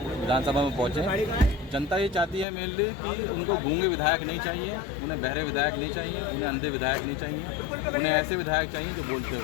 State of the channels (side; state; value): right; drops out; at 2.5 s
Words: विधानसभा में पहुँचें। जनता ये चाहती है मेनली कि उनको गूंगे विधायक नहीं चाहिए, उन्हें बहरे विधायक नहीं चाहिए, उन्हें अंधे विधायक नहीं चाहिए, उन्हें ऐसे विधायक चाहिए जो बोलते